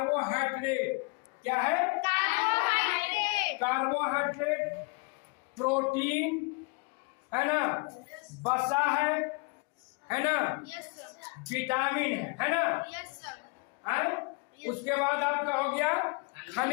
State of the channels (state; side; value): quieter; right; 31.0 dB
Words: क्या है? कार्बोहाइड्रेट। कार्बोहाइड्रेट, प्रोटीन है ना, वसा है ना, विटामिन है ना, उसके बाद आपका हो गया